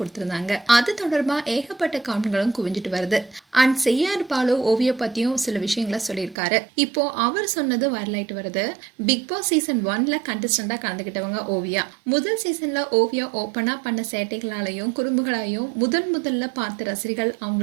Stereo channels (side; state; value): left; drops out; at 6.4 s